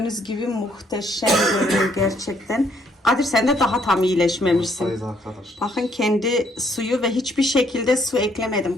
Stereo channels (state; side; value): normal; both; correlation 0.68